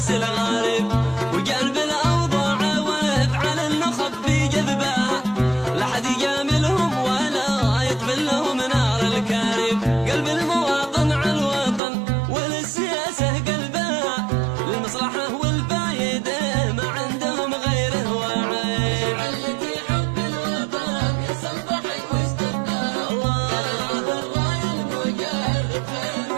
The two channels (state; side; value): drops out; left; at 11.8 s